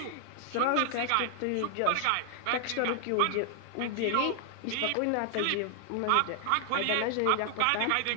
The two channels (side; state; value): both; different; correlation 0.00